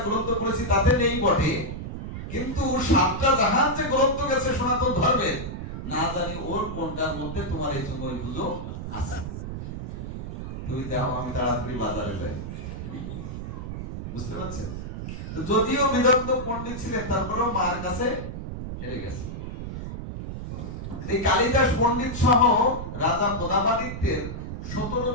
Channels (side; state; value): right; noise; rumble, 7 dB below the sound